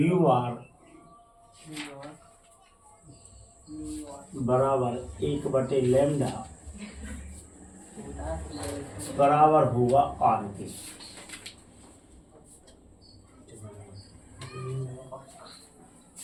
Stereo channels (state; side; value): identical; both; correlation 1.00